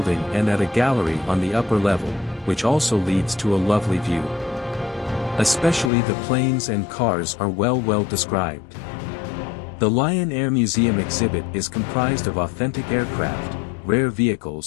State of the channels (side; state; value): right; drops out; at 5.9 s